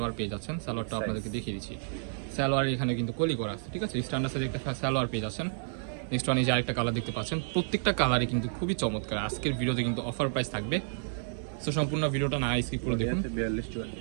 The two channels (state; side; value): silent; left; digital silence